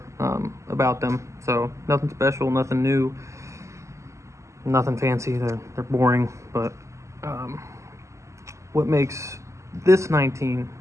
about them. So nothing special, nothing new, nothing fancy. They're boring. But what makes this 19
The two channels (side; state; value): left; late; 0.14 ms